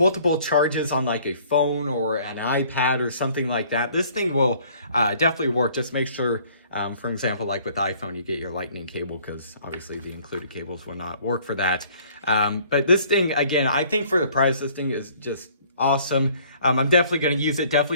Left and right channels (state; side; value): inverted; both; correlation -0.57